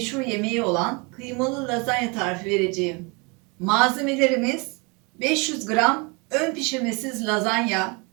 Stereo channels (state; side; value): quieter; left; 30.1 dB